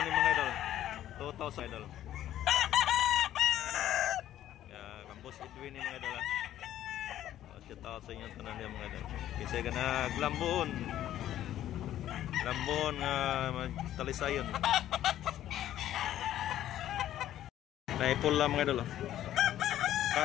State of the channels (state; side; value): quieter; right; 12.4 dB